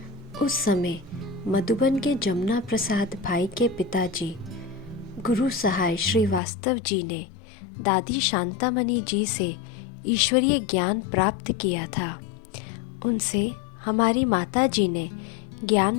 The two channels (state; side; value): drops out; right; at 6.4 s